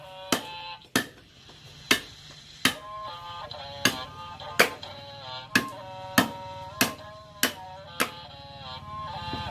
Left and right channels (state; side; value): identical; both; correlation 1.00